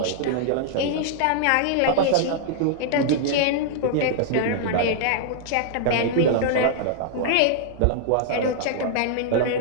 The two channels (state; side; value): different; both; correlation -0.01